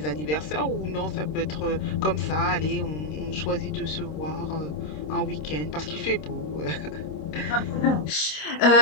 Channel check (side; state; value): right; late; 26 ms